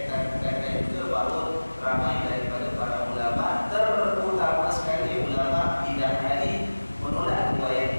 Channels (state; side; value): inverted; both; correlation -1.00